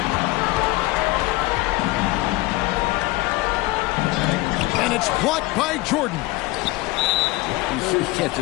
And it's blocked by Jordan. You can't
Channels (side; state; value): right; quieter; 20.3 dB